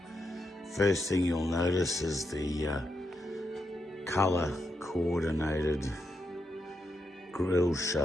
First thing you'll notice is the color coordinated grille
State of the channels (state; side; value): normal; both; correlation 0.83